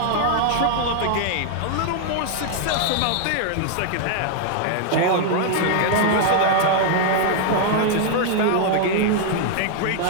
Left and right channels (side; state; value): both; different; correlation 0.00